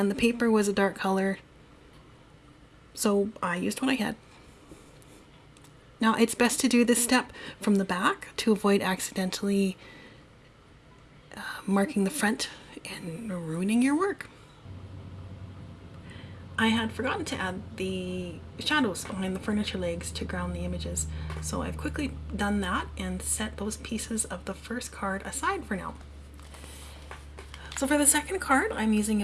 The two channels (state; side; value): identical; both; correlation 1.00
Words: the paper was a dark color, so I used what I had. Now it's best to do this step from the back to avoid accidentally marking the front and ruining your work. I had forgotten to add the shadows behind the furniture legs to ground the images, so I've quickly done that and set those pieces of the first card aside for now. So for the second card, I'm using